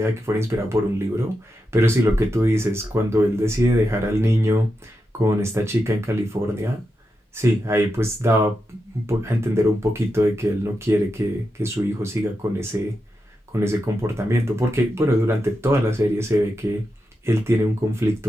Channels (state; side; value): normal; both; correlation 0.87